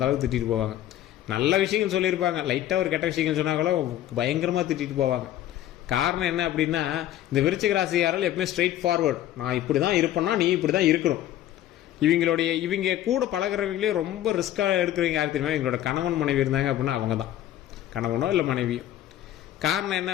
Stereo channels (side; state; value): right; quieter; 12.7 dB